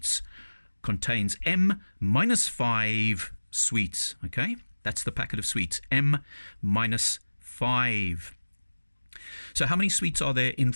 contains m minus 5 sweets. Okay, that's the packet of sweets, m minus 5. So how many sweets are there in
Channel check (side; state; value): both; inverted; correlation -1.00